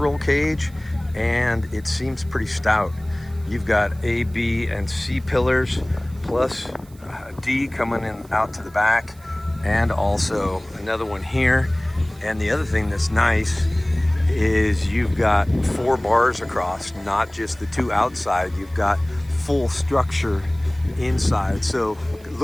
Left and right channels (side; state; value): right; noise; hiss, 27 dB below the sound